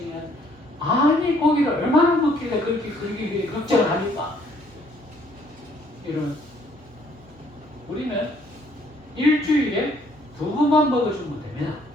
아니 고기를 얼마나 먹길래 그렇게 걱정을 합니까? 이런 우리는 일주일에 2번만 먹어주면 됩니다.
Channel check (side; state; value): both; normal; correlation 0.64